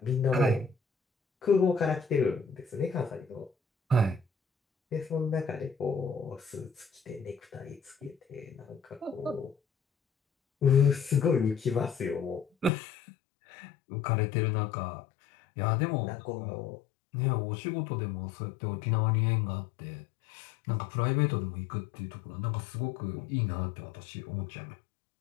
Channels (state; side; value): drops out; right; at 12.7 s